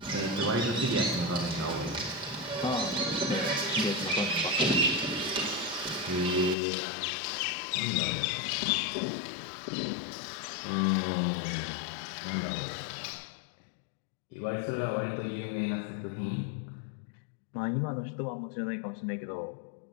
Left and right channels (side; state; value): right; drops out; at 6.6 s